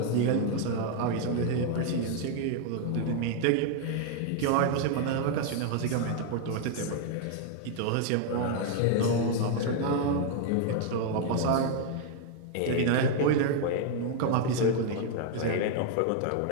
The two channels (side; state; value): both; different; correlation 0.00